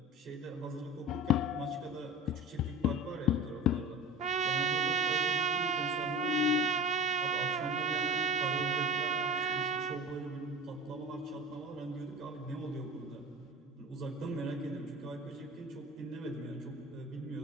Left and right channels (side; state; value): both; normal; correlation 0.33